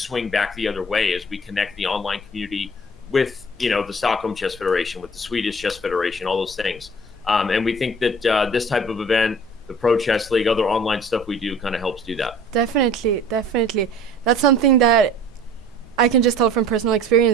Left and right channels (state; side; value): normal; both; correlation 0.47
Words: back the other way as we connect the online community with, the Stockholm Chess Federation, with the Swedish Chess Federation, all those things. And we think that this type of event, the Pro Chess League, other online stuff we do kind of helps do that. Definitely. That's something that I can just tell from personal